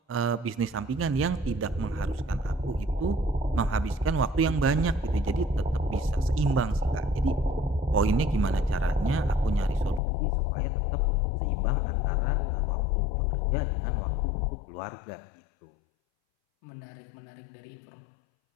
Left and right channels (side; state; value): right; drops out; at 10.0 s